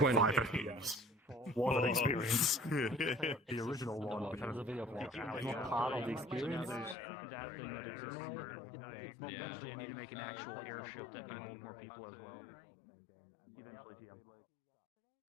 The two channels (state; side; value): drops out; right; at 7.0 s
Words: What an experience. The original one, which has a video of part of the experience. That thing that exists. But eventually you need to make an actual airship that can hold more people as well. Eventually, TM.